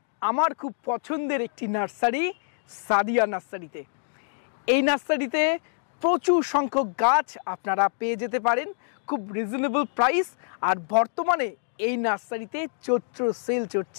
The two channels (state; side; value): silent; right; digital silence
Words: আমার খুব পছন্দের একটি নার্সারি, সাদিয়া নার্সারিতে। এই নার্সারিতে প্রচুর সংখ্যক গাছ আপনারা পেয়ে যেতে পারেন খুব রিজনেবল প্রাইস। আর বর্তমানে এই নার্সারিতে চৈত্র সেল